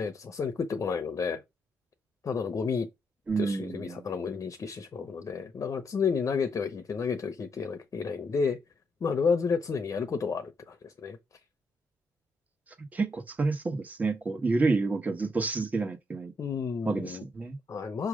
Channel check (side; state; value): both; normal; correlation 0.78